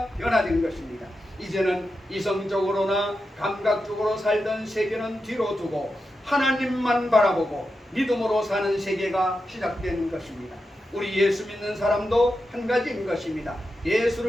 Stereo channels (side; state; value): both; normal; correlation 0.89